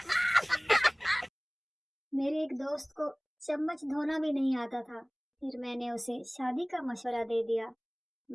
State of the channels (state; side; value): identical; both; correlation 1.00